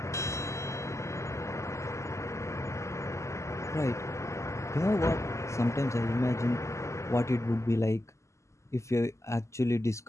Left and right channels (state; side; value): late; right; 0.14 ms